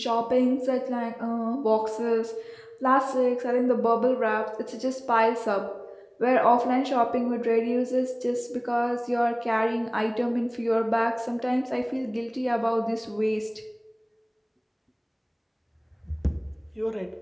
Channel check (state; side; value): identical; both; correlation 1.00